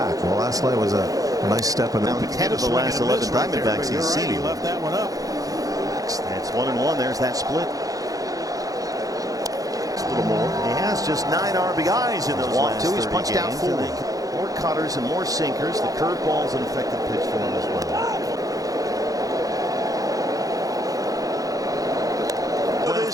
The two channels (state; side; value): late; left; 0.17 ms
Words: Well, last night was a nice step in the 10 of the last 11 Diamondbacks he's seen. He left that one up. That's 1-1. There's that split. A little more. He has just 9 RBIs in those last 30 He's punched out games. 4. More cutters and more sinkers. The curveball's an effective pitch for him as well.